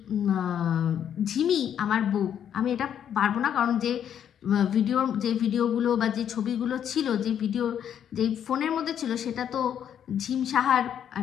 ঝিমি আমার বউ। আমি এটা পারবো না, কারণ যে ভিডিওগুলো বা যে ছবিগুলো ছিল, যে ফোনের মধ্যে ছিল, সেটা তো ঝিম সাহার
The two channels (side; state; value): right; quieter; 9.2 dB